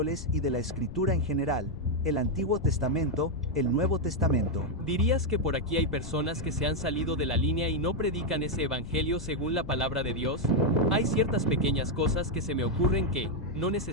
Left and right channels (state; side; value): noise; left; rumble, 12 dB below the sound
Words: y de la Escritura en general. El Antiguo Testamento, el Nuevo Testamento. ¿Dirías que por aquí hay personas que se han salido de la línea y no predican ese evangelio según la palabra de Dios? Hay ciertas pequeñas cosas que se me ocurren que, no